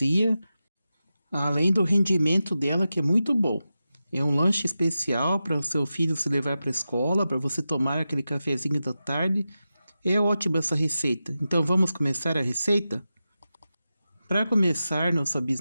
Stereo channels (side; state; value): both; inverted; correlation -0.92